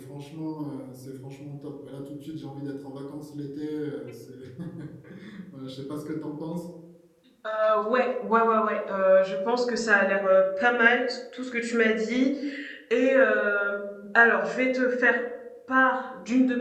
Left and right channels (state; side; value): identical; both; correlation 1.00